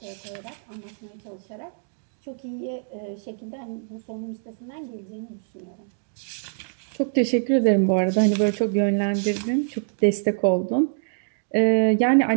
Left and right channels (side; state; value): left; silent; digital silence